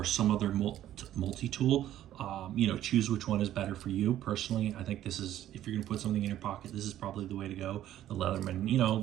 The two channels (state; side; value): quieter; left; 12.5 dB